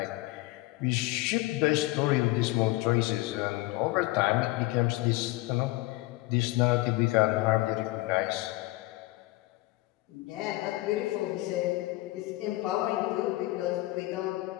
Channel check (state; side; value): quieter; right; 19.5 dB